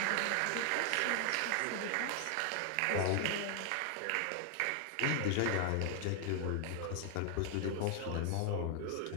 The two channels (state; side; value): different; both; correlation 0.00